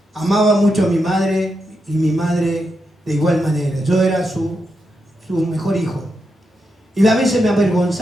Amaba mucho a mi madre y mi madre de igual manera. Yo era su mejor hijo. Y a veces me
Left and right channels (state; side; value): normal; both; correlation 0.85